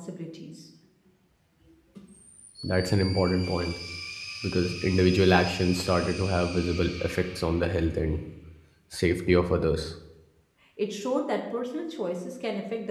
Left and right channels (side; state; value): both; identical; correlation 1.00